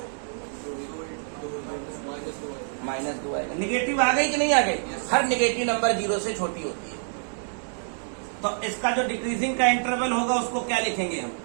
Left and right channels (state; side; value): silent; left; digital silence